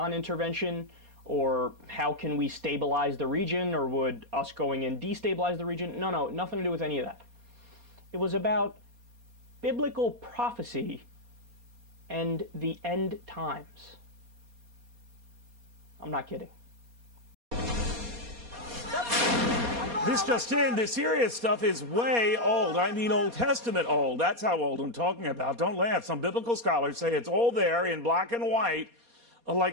Or how can we stabilize the region? Or would us going in destabilize the region? No, nothing to do with any of that. It was about biblical prophecy and the end times. I'm not kidding. This just in, the Syria stuff is way old. I mean Old Testament old. That's how old I'm talking about. Don't laugh. Some biblical scholars say it's all there in black and white,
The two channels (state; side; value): late; left; 4.2 ms